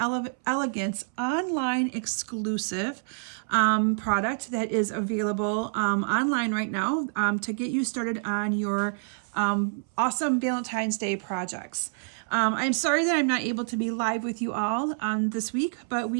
Elegance online exclusive product that is available online right now to get you started on your awesome Valentine's Day projects. I'm sorry that I'm not able to be live with you all this week, but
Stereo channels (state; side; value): silent; left; 60 dB below the other